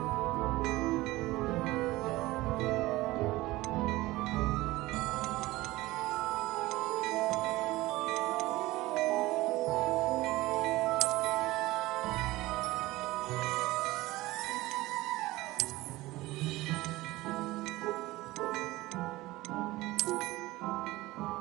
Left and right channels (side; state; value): left; quieter; 18.8 dB